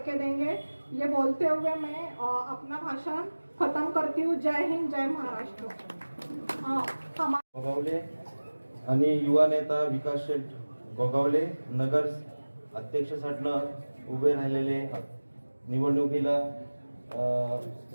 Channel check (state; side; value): inverted; both; correlation -1.00